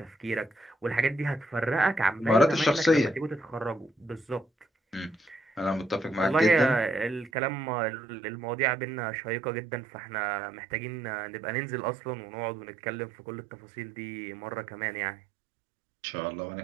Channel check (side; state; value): left; drops out; at 7.3 s